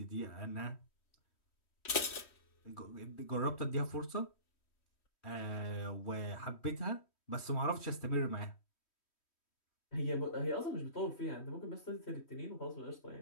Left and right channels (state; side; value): late; right; 3.1 ms